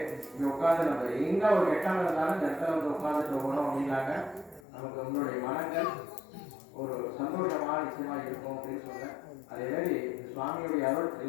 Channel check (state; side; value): drops out; right; at 4.6 s